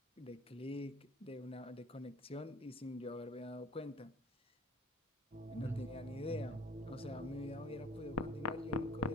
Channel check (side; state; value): both; normal; correlation 0.52